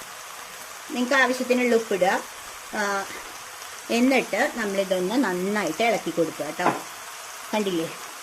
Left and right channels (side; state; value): both; identical; correlation 1.00